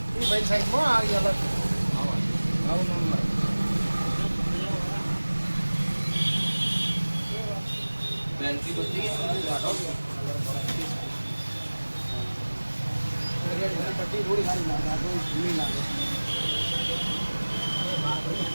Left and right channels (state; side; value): inverted; both; correlation -1.00